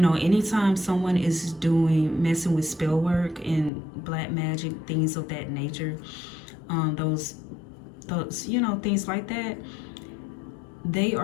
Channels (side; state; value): right; drops out; at 3.7 s